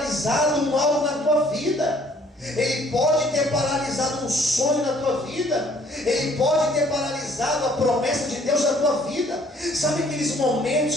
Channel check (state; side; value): normal; both; correlation 0.59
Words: algo na tua vida. Ele pode ter paralisado um sonho na tua vida. Ele pode ter paralisado a promessa de Deus na tua vida. Sabe aqueles momentos